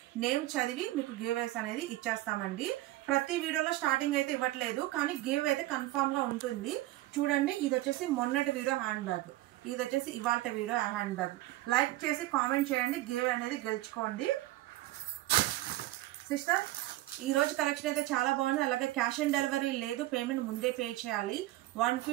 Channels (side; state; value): left; quieter; 16.9 dB